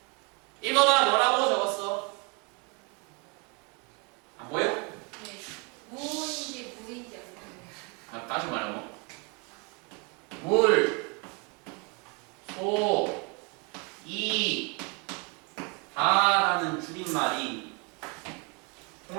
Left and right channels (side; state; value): left; quieter; 32.6 dB